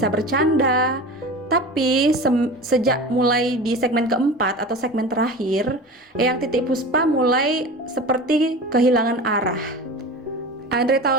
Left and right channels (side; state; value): both; normal; correlation 0.33